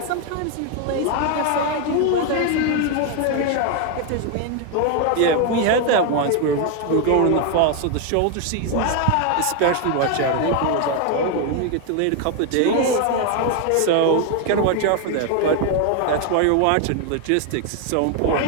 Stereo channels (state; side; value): different; both; correlation 0.01